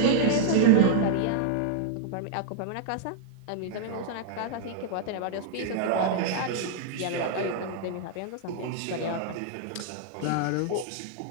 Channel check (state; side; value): different; both; correlation -0.01